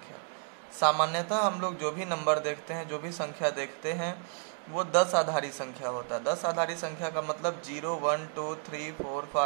सामान्यतः हम लोग जो भी नंबर देखते हैं, जो भी संख्या देखते हैं, वो 10 आधारी संख्या होता है। 10 आधारी संख्या का मतलब 0, 1, 2, 3, 4,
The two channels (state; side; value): silent; left; 57 dB below the other